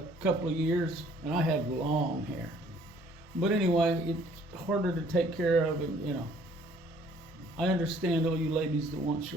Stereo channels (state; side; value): normal; both; correlation 0.59